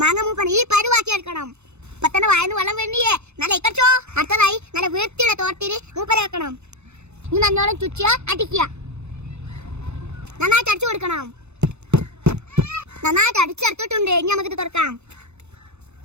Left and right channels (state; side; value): late; left; 0.81 ms